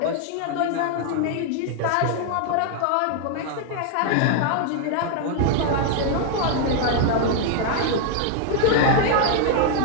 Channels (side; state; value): both; different; correlation 0.00